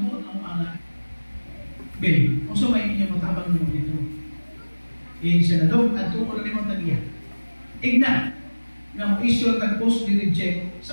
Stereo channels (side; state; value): both; inverted; correlation -1.00